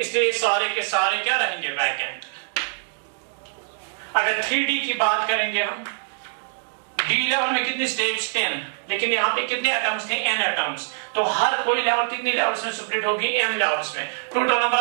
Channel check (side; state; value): left; silent; digital silence